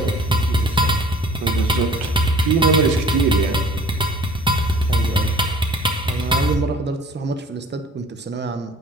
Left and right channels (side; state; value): both; normal; correlation 0.49